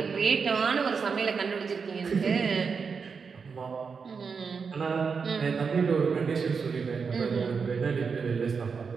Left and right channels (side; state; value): left; quieter; 5.6 dB